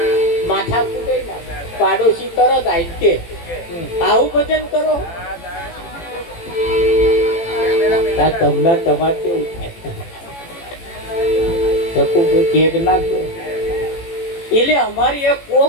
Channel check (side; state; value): right; late; 18 ms